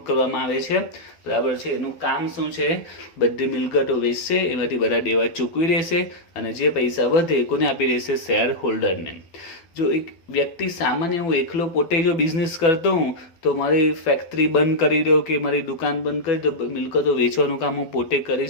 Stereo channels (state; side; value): late; right; 12 ms